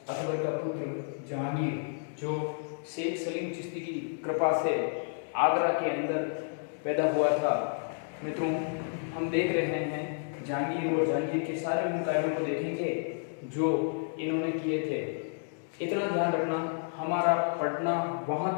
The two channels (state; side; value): silent; right; digital silence